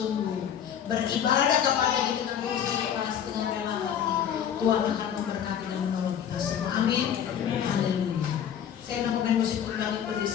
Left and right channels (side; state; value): right; quieter; 9.0 dB